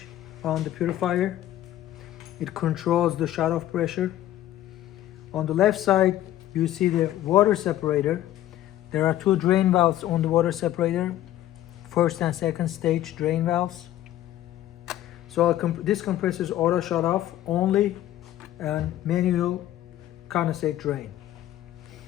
on the purifier. It controls the shut-off pressure. On the left side you see the water separator. There are two drain valves on the water separator, first and second stage drain valves. So this compressor is auto shut off only and manual condensate drain.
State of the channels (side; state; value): right; quieter; 13.3 dB